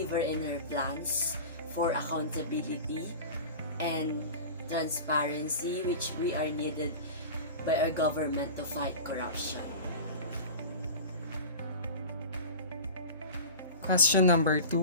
in her plans for accountability and transparency, which we are needed by our government to fight corruption. Question number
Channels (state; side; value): inverted; both; correlation -0.33